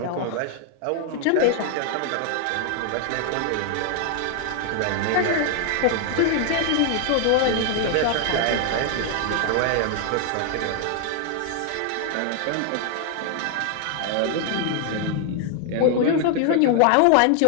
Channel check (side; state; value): both; different; correlation 0.00